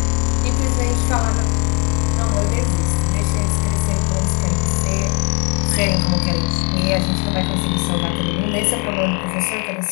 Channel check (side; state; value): right; quieter; 34.4 dB